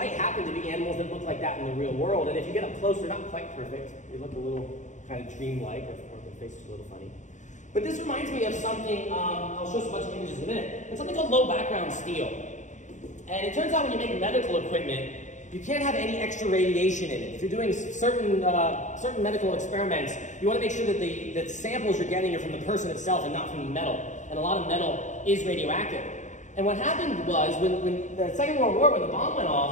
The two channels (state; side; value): late; right; 0.35 ms